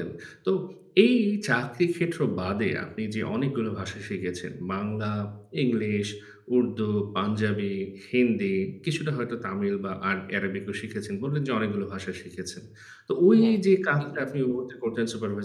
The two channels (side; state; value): both; identical; correlation 1.00